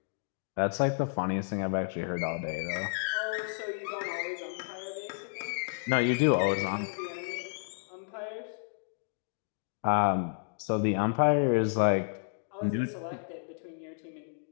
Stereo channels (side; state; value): right; silent; digital silence